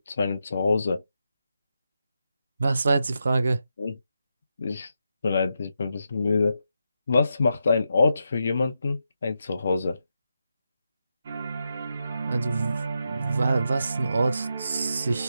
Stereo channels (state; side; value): inverted; both; correlation -0.85